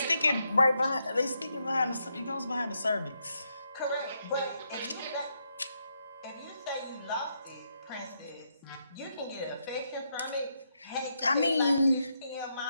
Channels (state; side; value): inverted; both; correlation -0.80